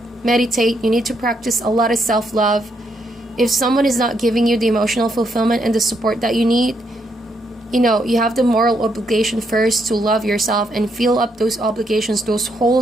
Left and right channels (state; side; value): normal; both; correlation 0.76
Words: meditate. You need to practice a lot of self-love. If someone is not giving you the emotional fulfillment and the support that you need, you have the moral obligation first to love yourself and fill up those obligations, those